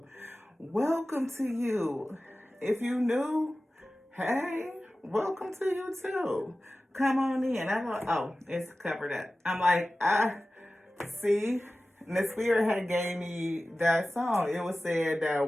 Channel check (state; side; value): normal; both; correlation 0.96